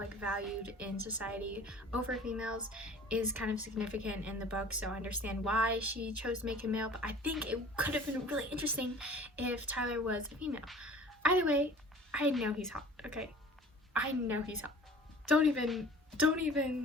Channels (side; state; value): both; normal; correlation 0.46